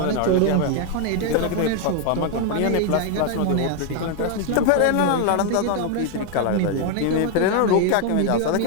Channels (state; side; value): different; both; correlation 0.01